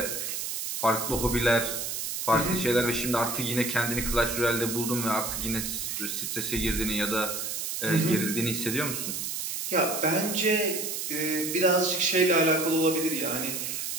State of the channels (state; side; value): noise; right; hiss, 3 dB below the sound